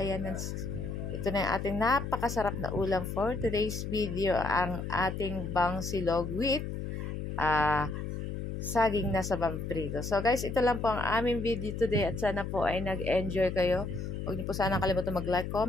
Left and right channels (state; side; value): noise; left; hum, 5 dB below the sound